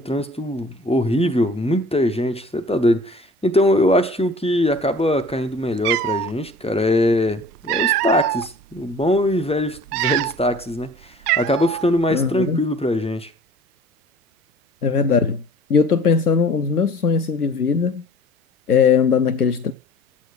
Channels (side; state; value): both; normal; correlation 0.47